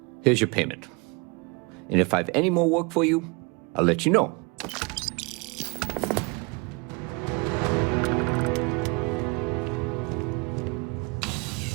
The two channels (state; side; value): quieter; left; 29.1 dB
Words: Here's your payment. And if I have any more work for you, I'll let you know.